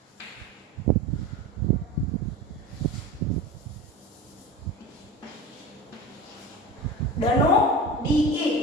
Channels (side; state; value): both; normal; correlation 0.31